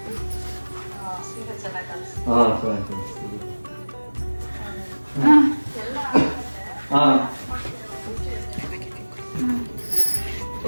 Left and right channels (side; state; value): both; inverted; correlation -1.00